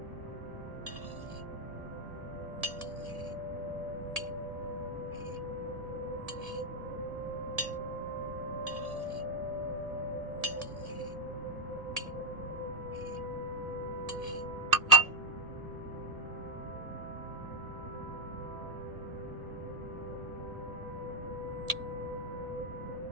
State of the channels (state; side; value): late; left; 1.7 ms